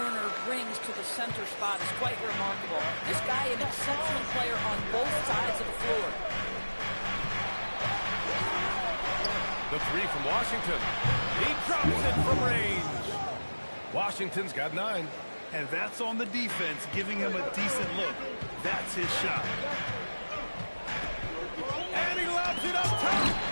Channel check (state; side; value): inverted; both; correlation -1.00